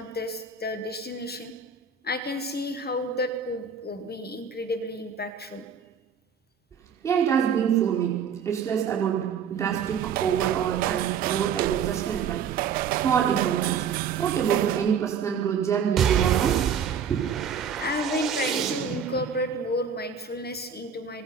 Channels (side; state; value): left; quieter; 6.8 dB